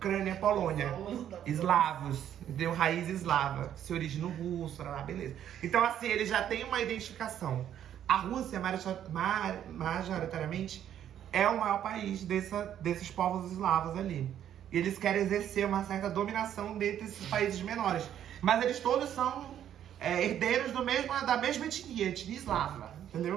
Polônia. Eslavos, deu raiz eslava, se origina russo, beleza. Então, assim, eles já têm uma identificação. A Rússia, majoritariamente, é o maior país desses povos eslavos ali. E eles querem exercer uma certa dominação dentre esses países menores. Mas eles todos são herdeiros da mesma etnia eslava,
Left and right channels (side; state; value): left; quieter; 10.4 dB